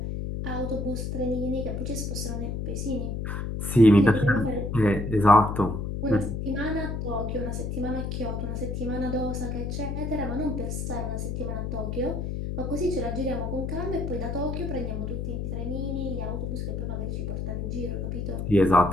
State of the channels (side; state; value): left; noise; hum, 3 dB below the sound